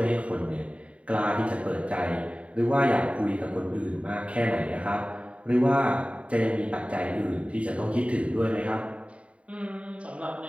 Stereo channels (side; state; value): left; late; 0.063 ms